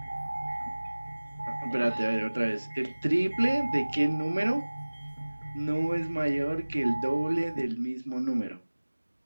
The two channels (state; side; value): inverted; both; correlation -1.00